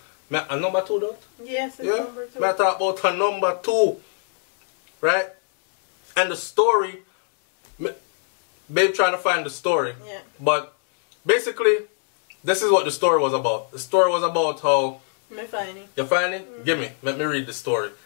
A number 2, don't? Yes, it's number 2. Me I talk about a number 2. Right? And the story, babe trying to find the story. Yeah. But basically, this is what the story was about. The story was about how... Me find it. You find it? Give me. Let me read the story.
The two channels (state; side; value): silent; right; 59 dB below the other